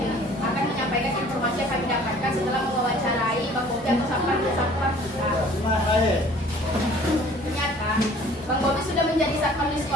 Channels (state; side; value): normal; both; correlation 0.52